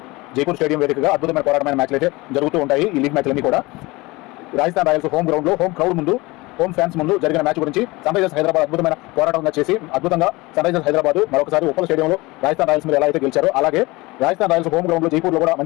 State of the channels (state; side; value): quieter; right; 22.4 dB